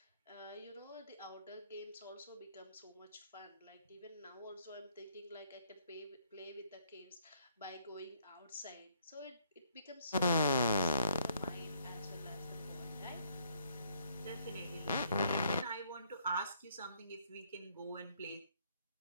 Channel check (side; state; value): both; inverted; correlation -0.67